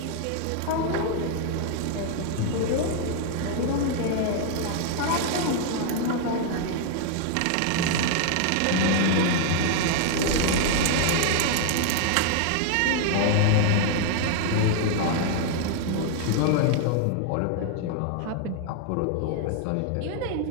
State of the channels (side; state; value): both; different; correlation 0.00